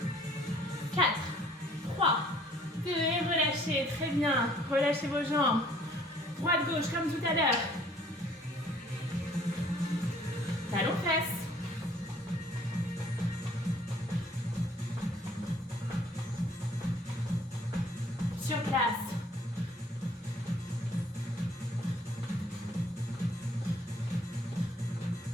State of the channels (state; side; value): normal; both; correlation 0.58